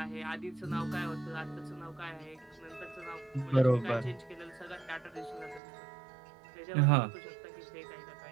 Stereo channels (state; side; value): drops out; left; at 5.6 s